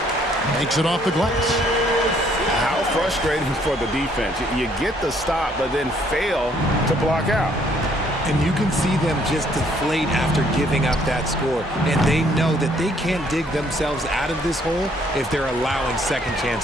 Makes it off the glass. How frustrating for the defense. You get the stop, but then fail to block out. And you can see them just deflate after giving up that score. And they know that they can't dig themselves out of this hole if they're allowing second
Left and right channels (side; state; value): both; normal; correlation 0.65